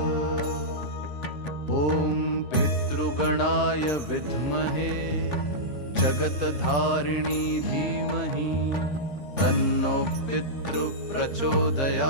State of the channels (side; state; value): right; late; 3.4 ms